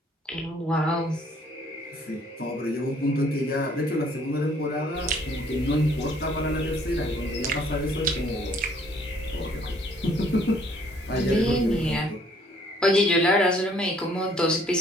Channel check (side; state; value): both; normal; correlation 0.62